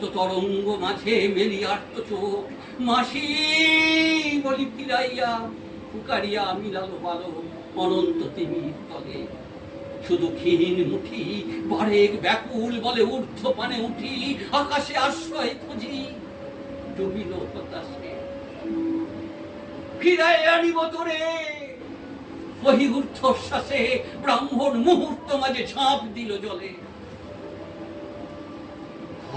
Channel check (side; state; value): both; identical; correlation 1.00